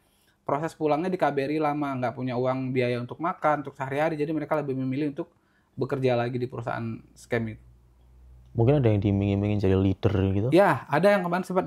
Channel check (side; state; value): both; identical; correlation 1.00